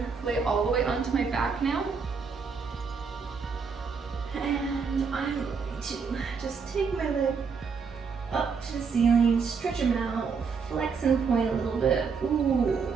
lay all the way onto my back now. And I'm going to just take my leg up to the ceiling, stretch them out, flex and point a little bit. Ooh.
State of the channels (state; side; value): quieter; left; 5.5 dB